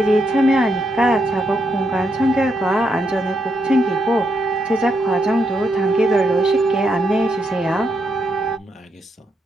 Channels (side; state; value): both; normal; correlation 0.79